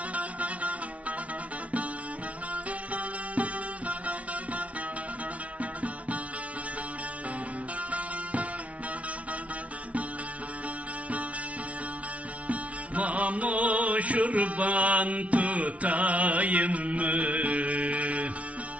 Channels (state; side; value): late; left; 0.065 ms